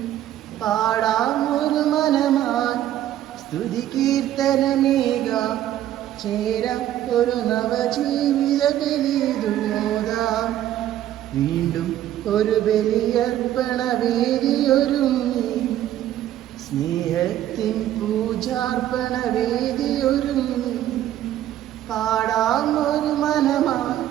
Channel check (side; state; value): left; quieter; 12.4 dB